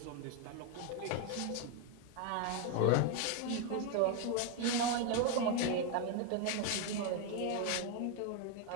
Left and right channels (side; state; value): both; different; correlation 0.01